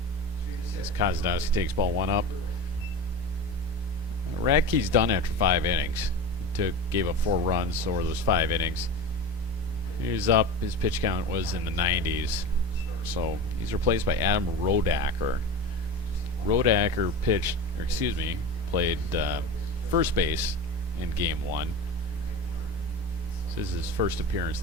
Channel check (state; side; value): normal; both; correlation 0.28